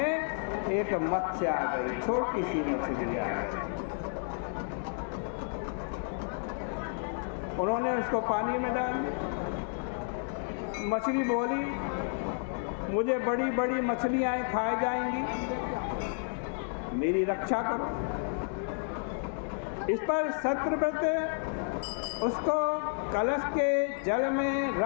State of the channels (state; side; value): silent; right; 57 dB below the other